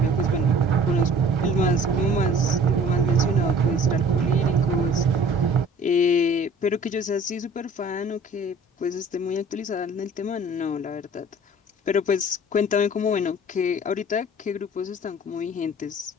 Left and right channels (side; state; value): both; normal; correlation 0.49